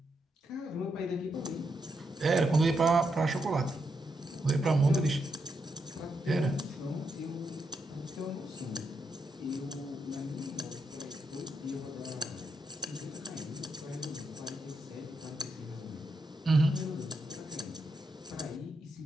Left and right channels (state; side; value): normal; both; correlation 0.82